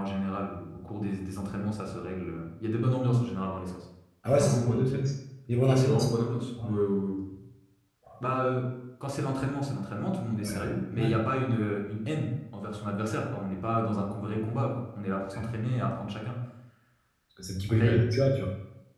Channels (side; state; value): both; identical; correlation 1.00